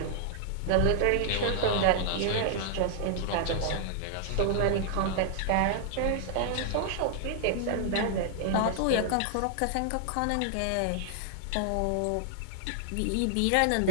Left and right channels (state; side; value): different; both; correlation 0.00